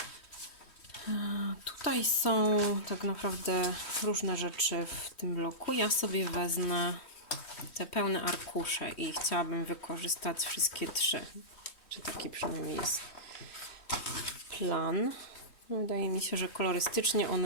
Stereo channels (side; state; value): right; late; 3.1 ms